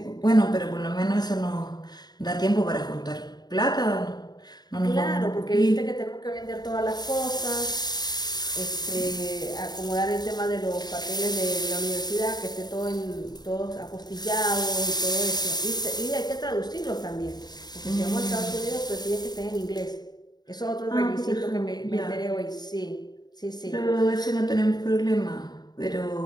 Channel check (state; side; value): late; right; 0.20 ms